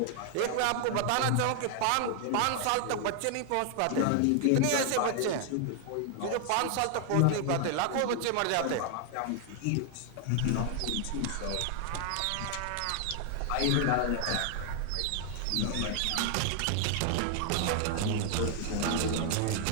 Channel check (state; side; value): different; both; correlation 0.00